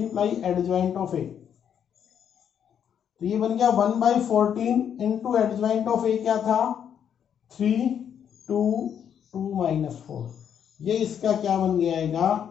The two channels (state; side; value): quieter; right; 8.6 dB